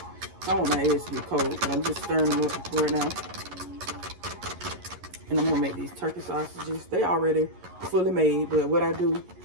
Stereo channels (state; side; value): late; left; 11 ms